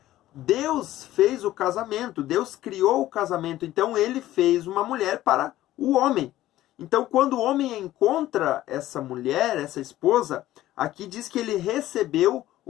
Deus fez o casamento, Deus criou o casamento, então ele fez uma mulher para o homem. Então quando o homem encontra essa mulher, essa esposa, aqui diz que ele recebeu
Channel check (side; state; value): right; quieter; 14.7 dB